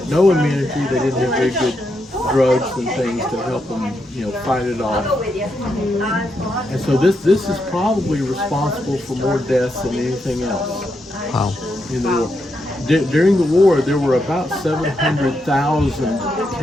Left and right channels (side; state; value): both; normal; correlation 0.82